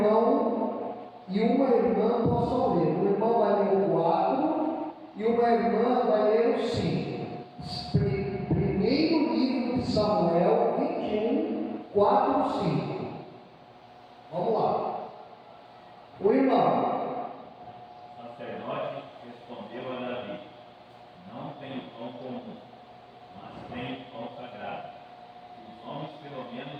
e uma irmã possam ler. Um irmão vai ler o 4 e uma irmã vai ler o 5. Primeiro livro de Samuel 21, 4 e 5. Vamos lá. O irmão. O sacerdote respondeu a Davi: não tenho pão comum, mas tenho pão sagrado. Os homens, pelo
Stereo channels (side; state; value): both; identical; correlation 1.00